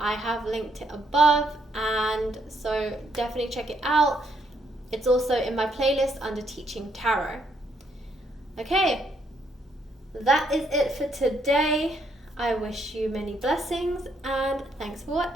have linked it above, and so definitely check it out. It's also in my playlist under Teaching Tarot. Okay, that is it for today. I wish you many blessings, and thanks for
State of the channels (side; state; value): both; normal; correlation 0.73